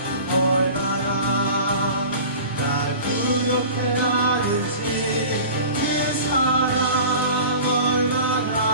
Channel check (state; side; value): inverted; both; correlation -0.39